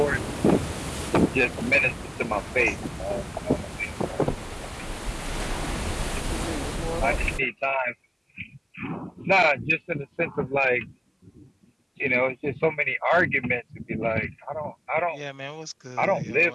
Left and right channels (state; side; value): identical; both; correlation 1.00